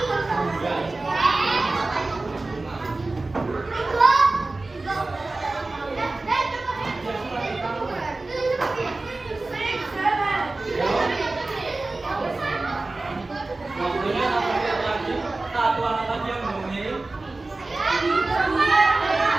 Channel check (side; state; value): left; quieter; 3.2 dB